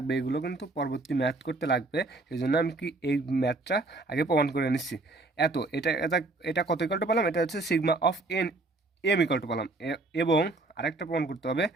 এগুলো কিন্তু পরবর্তী ম্যাথ করতে লাগবে, সেই জন্য আমি কি এই ম্যাথটা আগে প্রমাণ করে নিচ্ছি। এটা এটা এটা কত ইকুয়াল টু পেলাম, এটা হচ্ছে sigma of M equal to পেলাম। এবং আরেকটা প্রমাণ করতে হবে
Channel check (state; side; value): quieter; left; 3.2 dB